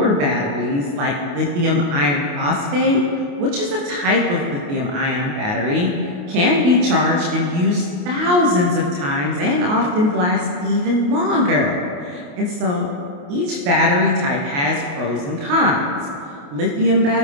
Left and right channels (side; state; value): left; late; 28 ms